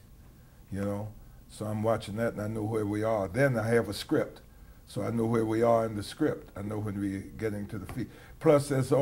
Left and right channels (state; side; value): identical; both; correlation 1.00